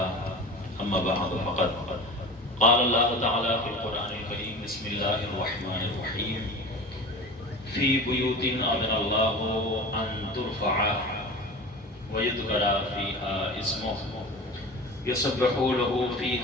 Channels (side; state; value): both; normal; correlation 0.34